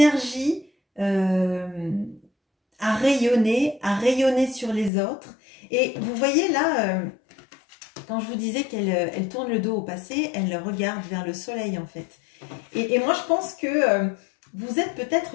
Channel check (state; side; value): drops out; right; at 4.9 s